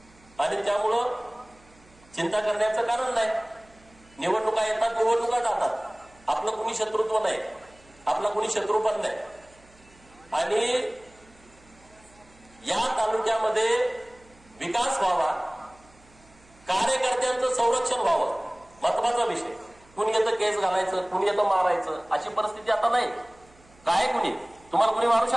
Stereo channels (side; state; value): right; noise; hum, 28 dB below the sound